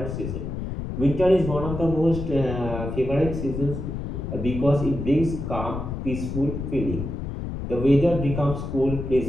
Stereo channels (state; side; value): noise; left; rumble, 5 dB below the sound